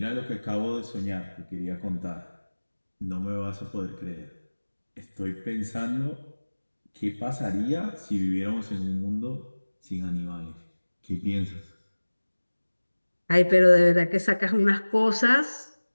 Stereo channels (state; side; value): inverted; both; correlation -1.00